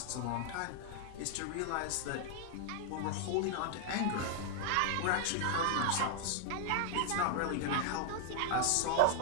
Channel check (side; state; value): both; different; correlation 0.00